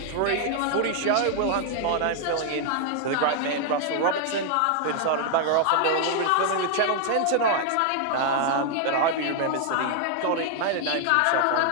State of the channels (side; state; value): both; different; correlation 0.00